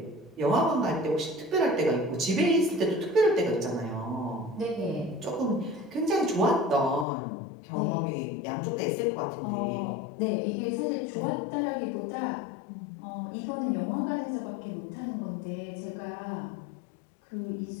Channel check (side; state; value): right; drops out; at 7.1 s